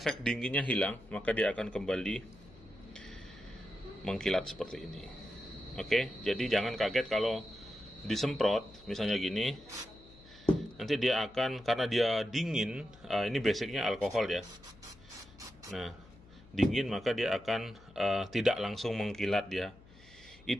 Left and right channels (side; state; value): left; noise; hum, 23 dB below the sound